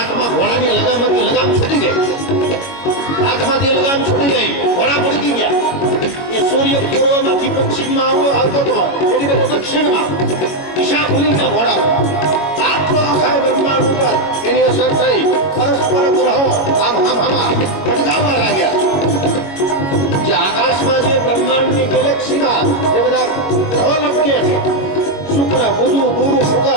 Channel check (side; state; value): right; late; 22 ms